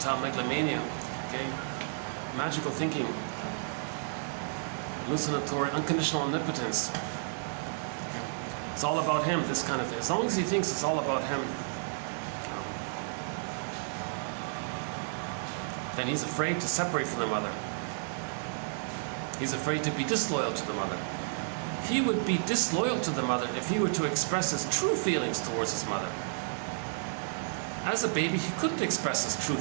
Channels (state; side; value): silent; left; 57 dB below the other